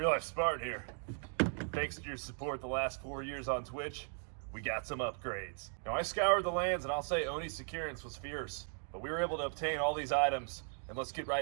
RealLifeSpartan here. Thanks to your support the last 4 years on Twitch, we got some upgrades. Now, I scoured the lands, and I'll say Oni's securance was fierce, but we were able to obtain all these items, and let's get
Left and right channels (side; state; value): left; silent; 53 dB below the other